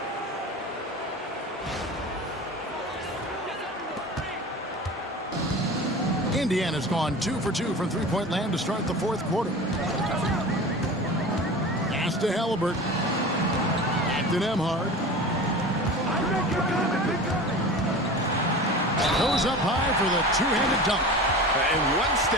Indiana's gone 2 for 2 from 3-point land to start the fourth quarter. Pass Pass to Halliburton. Back to Nembhard. Goes up high for the two-handed dunk. And one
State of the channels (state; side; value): normal; both; correlation 0.34